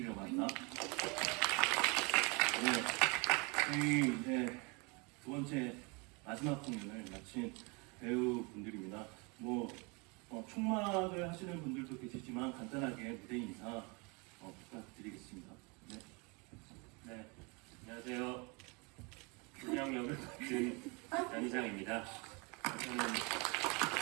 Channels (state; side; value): quieter; left; 29.8 dB